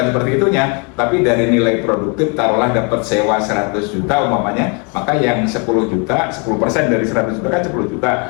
seperti itunya, tapi dari nilai produktif taruhlah dapat sewa 100 juta umpamanya, maka yang 10 juta, 10% dari 100 juta kan 10 juta.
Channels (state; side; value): quieter; right; 34.2 dB